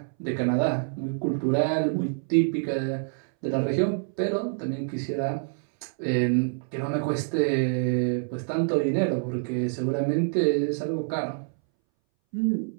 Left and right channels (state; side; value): silent; left; 60 dB below the other